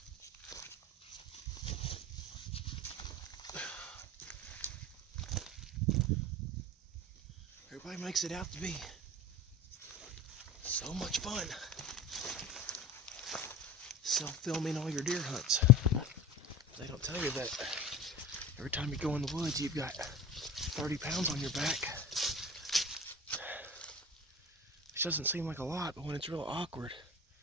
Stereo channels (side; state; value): both; normal; correlation 0.33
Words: Everybody makes it out to be so much fun. Self-filming all your deer hunts. They don't tell you that every time you go in the woods, you've got 30 pounds on your back. Which doesn't seem like a lot, but when it's real awkward,